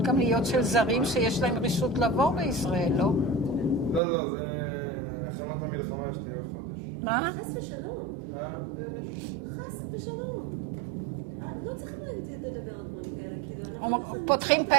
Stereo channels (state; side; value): drops out; left; at 4.0 s